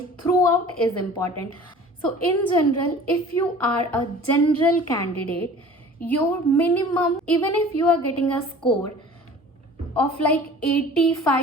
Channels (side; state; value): both; normal; correlation 0.44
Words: throughout is important. So in general, if you are a general candidate, your minimum, even if you are getting a score of like